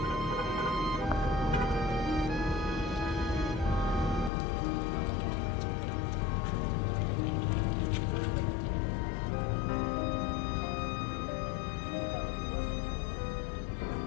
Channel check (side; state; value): right; drops out; at 4.3 s